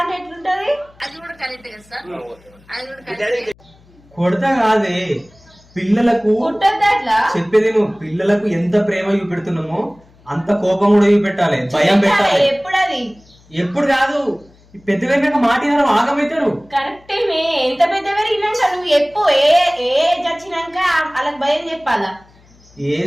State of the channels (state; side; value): noise; left; hum, 29 dB below the sound